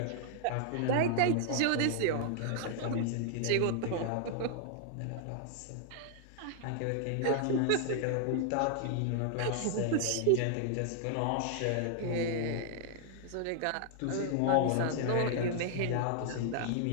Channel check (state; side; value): different; both; correlation 0.00